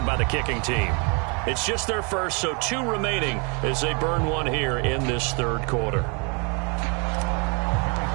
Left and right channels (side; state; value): left; quieter; 33.7 dB